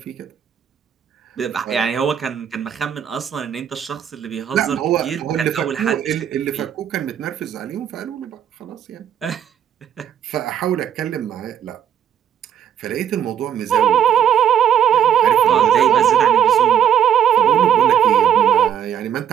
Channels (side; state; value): left; quieter; 9.4 dB